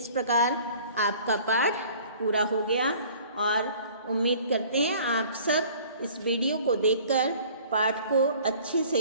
प्रकार आपका पाठ पूरा हो गया, और उम्मीद करते हैं आप सब इस वीडियो को देखकर पाठ को अच्छे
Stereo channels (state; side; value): inverted; both; correlation -0.50